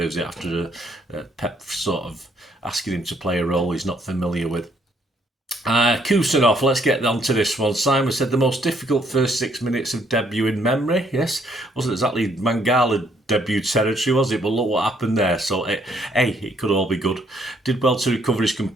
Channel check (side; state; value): both; normal; correlation 0.68